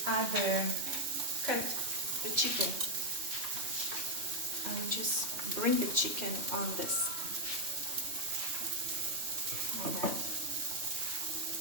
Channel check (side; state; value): left; late; 3.2 ms